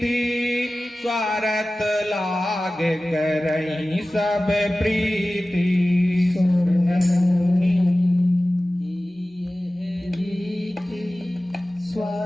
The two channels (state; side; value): normal; both; correlation 0.96